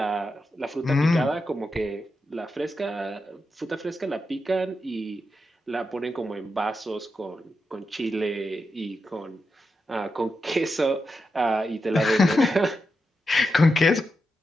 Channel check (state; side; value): normal; both; correlation 0.87